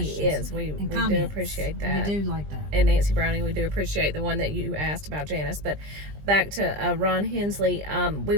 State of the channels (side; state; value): left; late; 20 ms